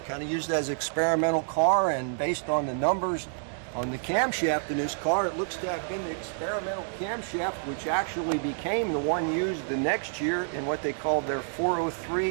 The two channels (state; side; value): silent; left; digital silence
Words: of used as an experimental car, and based on the numbers on the camshaft in this car, it looks to have been the experimental camshaft, which actually became the one used the next year in what they called their